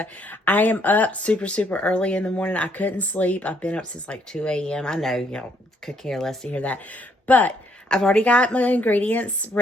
I am up super early in the morning. I couldn't sleep. I've been up since like 2 a.m. I know y'all could care less to hear that. But I've already got my ingredients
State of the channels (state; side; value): normal; both; correlation 0.69